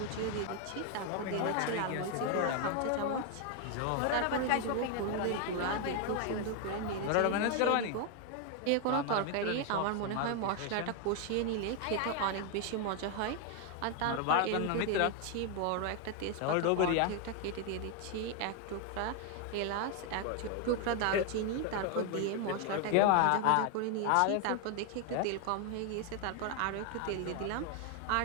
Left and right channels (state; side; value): different; both; correlation 0.01